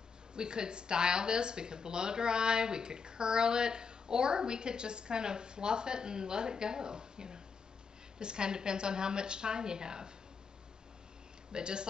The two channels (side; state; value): right; quieter; 5.5 dB